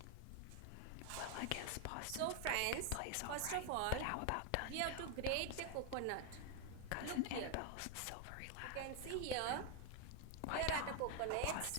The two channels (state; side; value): different; both; correlation 0.01